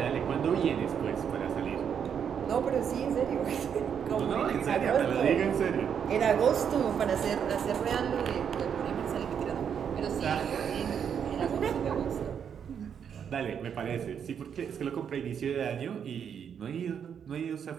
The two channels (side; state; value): left; quieter; 7.8 dB